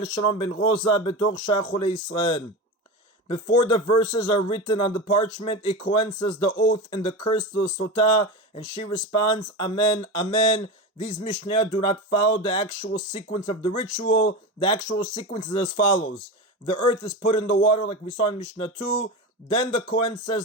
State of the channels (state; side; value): normal; both; correlation 0.23